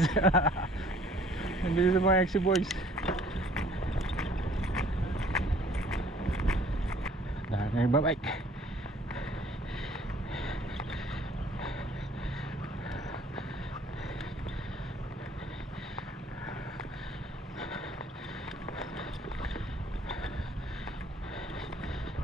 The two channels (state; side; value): normal; both; correlation 0.56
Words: Ang bilis sa mga exit boys. Dahil na yung babike.